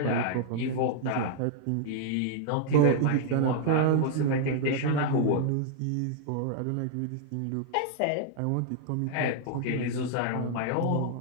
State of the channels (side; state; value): both; different; correlation -0.01